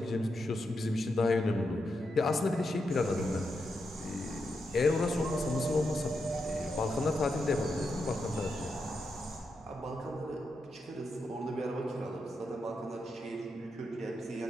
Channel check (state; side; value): normal; both; correlation 0.85